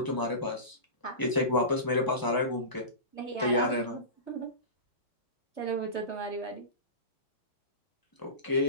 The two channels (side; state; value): right; late; 1.0 ms